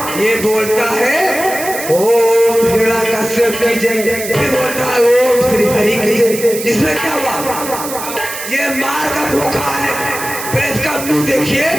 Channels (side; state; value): right; noise; hiss, 8 dB below the sound